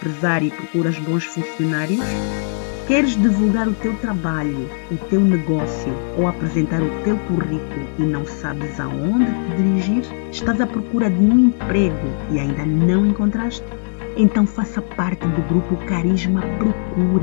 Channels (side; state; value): right; silent; digital silence